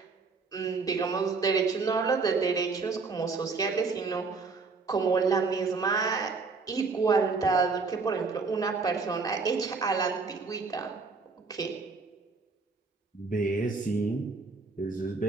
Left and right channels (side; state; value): left; quieter; 4.4 dB